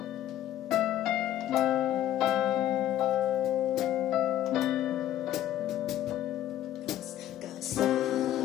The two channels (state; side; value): quieter; right; 12.5 dB